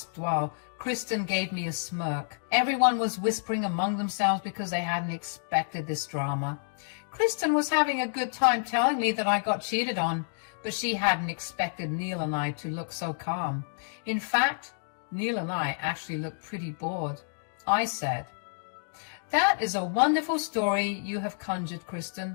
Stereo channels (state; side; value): silent; right; digital silence